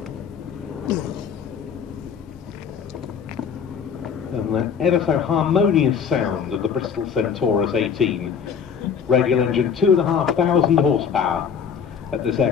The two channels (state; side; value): quieter; right; 6.9 dB